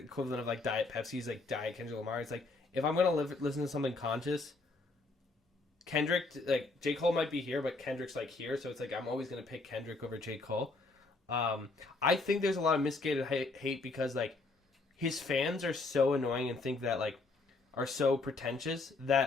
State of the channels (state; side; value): quieter; right; 3.5 dB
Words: of like Diet Pepsi's like Diet Kendrick Lamar. It's like, if I'm gonna listen to something conscious, Kendrick, like J. Cole might be here, but Kendrick's like here, so it's like I'm always gonna pick Kendrick over J. Cole. I think there's a lot of misguided hate because like his fans are so annoying and think that like are so pretentious